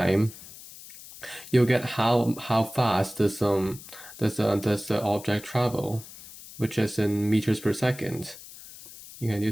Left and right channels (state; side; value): noise; left; hiss, 17 dB below the sound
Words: you'll get how fast does the object travel, which is in meters per second. You can